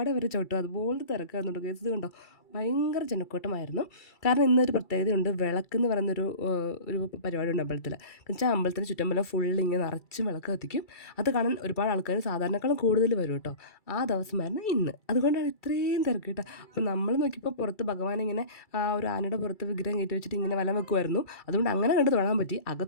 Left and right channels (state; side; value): late; right; 2.3 ms